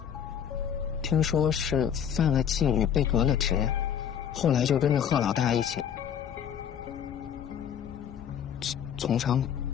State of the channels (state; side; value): quieter; right; 8.7 dB